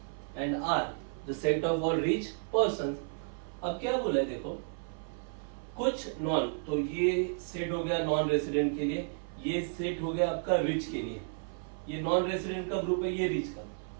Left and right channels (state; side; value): silent; left; 56 dB below the other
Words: and R the set of all rich persons. अब क्या बोला है देखो, कुछ नॉन, तो ये सेट हो गया नॉन रेसिडेंट के लिए, ये सेट हो गया आपका रिच के लिए. ये नॉन रेसिडेंट का ग्रुप है, ये रिच का.